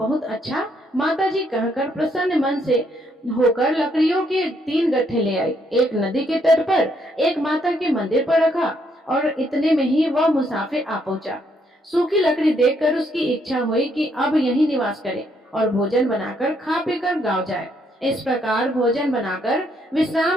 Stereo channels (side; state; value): both; normal; correlation 0.72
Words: अच्छा माताजी कहकर प्रसन्न मन से होकर लकड़ियों के 3 गट्ठे ले आई। एक नदी के तट पर, एक माता के मंदिर पर रखा और इतने में ही वह मुसाफिर आ पहुंचा। सूखी लकड़ी देखकर उसकी इच्छा हुई कि अब यहीं निवास करे और भोजन बनाकर खा पीकर गाँव जाए। इस प्रकार भोजन बनाकर